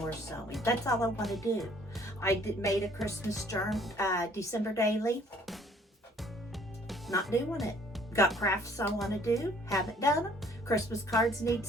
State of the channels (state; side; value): normal; both; correlation 0.59